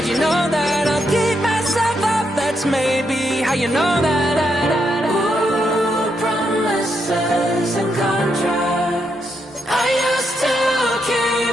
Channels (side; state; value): both; normal; correlation 0.80